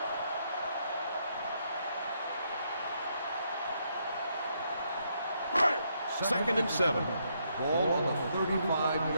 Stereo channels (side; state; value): both; inverted; correlation -0.75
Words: Second and 7. Ball on the